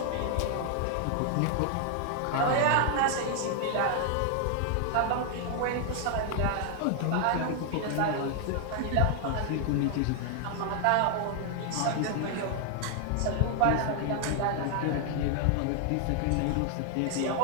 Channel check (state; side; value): different; both; correlation 0.00